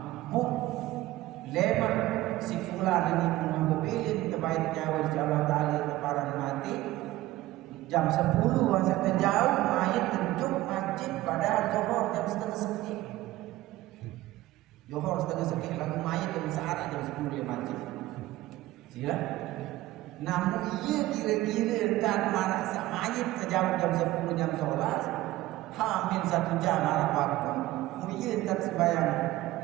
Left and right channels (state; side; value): quieter; left; 16.7 dB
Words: Lemak si fulan ini punya mobilin terbaik nyawa Allah Ta'ala teparan mati jam 10 masa terjauh mayat terjuk masjid padahal Johor jam setengah sekit lagu mayat jam sehari jam 10 di masjid sila namun iya kira-kira dan marah mayat terjauh jam 10 jam sholat hamil 1 jam marah waktu iya tak sembahyang